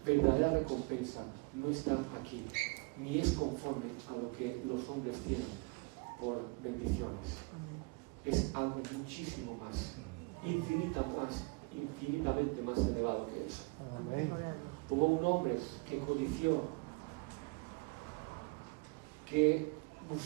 verdadera recompensa no está aquí, ni es conforme a lo que los hombres tienen por bendiciones. Es algo muchísimo más, infinitamente más elevado que eso. Amén. Hubo un hombre que codició, que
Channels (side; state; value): left; quieter; 28.9 dB